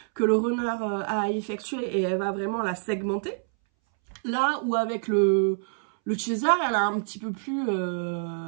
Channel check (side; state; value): left; silent; 60 dB below the other